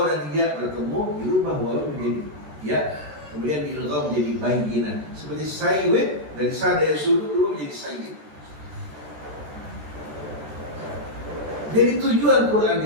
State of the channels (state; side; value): late; left; 14 ms